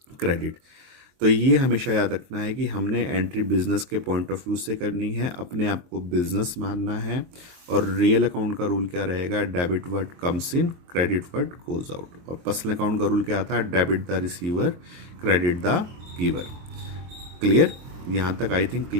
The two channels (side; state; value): left; late; 23 ms